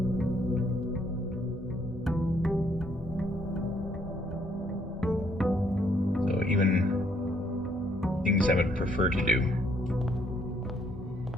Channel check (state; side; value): normal; both; correlation 0.68